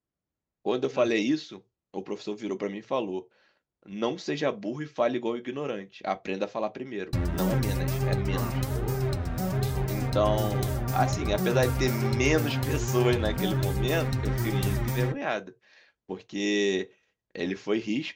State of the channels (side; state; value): both; identical; correlation 1.00